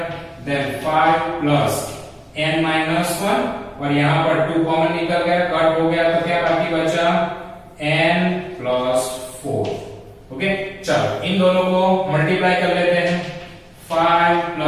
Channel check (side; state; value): both; identical; correlation 1.00